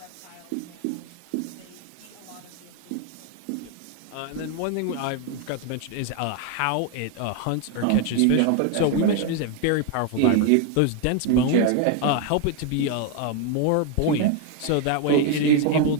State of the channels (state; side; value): different; both; correlation 0.01